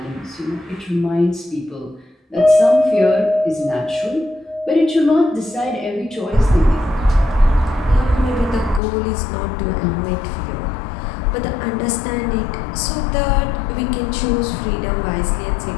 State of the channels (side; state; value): right; drops out; at 8.8 s